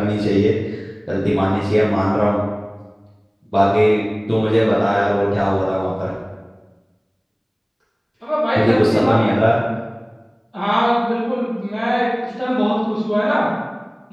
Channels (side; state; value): both; identical; correlation 1.00